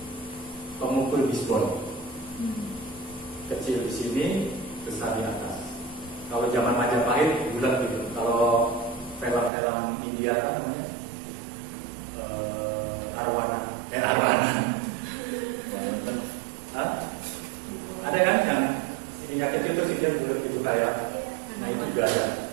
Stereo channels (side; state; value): left; drops out; at 9.5 s